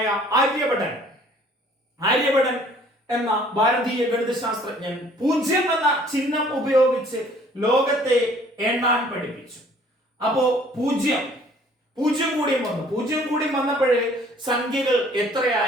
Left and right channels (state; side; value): normal; both; correlation 0.56